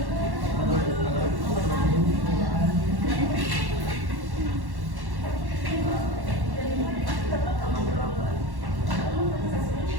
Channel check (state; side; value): late; left; 1.1 ms